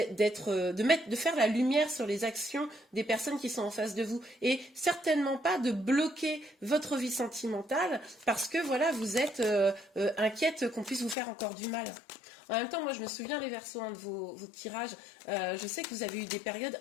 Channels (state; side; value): drops out; right; at 11.2 s